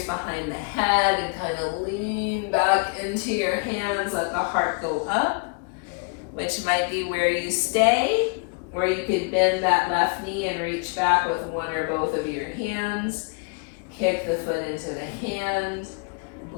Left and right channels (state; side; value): quieter; right; 33.4 dB